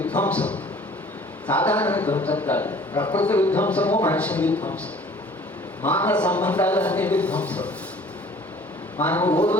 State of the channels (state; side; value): normal; both; correlation 0.51